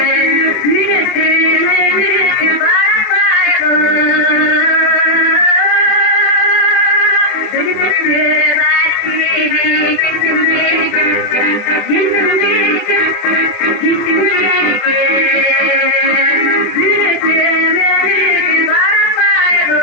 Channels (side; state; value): right; late; 24 ms